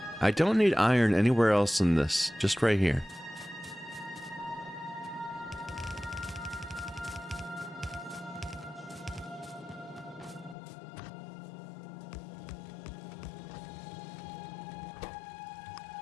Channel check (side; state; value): right; drops out; at 10.6 s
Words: I don't need iron anywhere else in this, just right here.